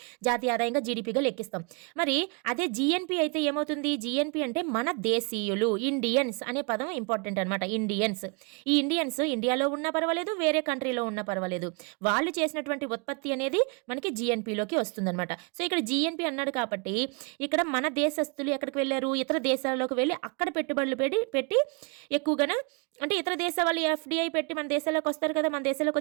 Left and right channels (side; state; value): left; quieter; 33.1 dB